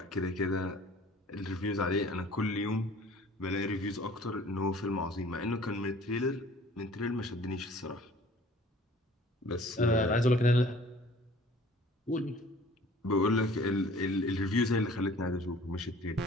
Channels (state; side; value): normal; both; correlation 0.51